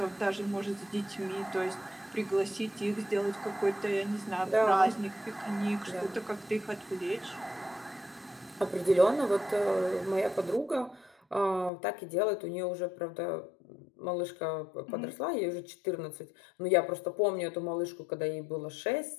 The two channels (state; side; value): drops out; right; at 11.7 s